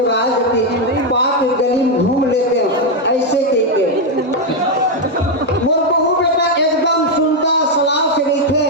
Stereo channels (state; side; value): normal; both; correlation 0.03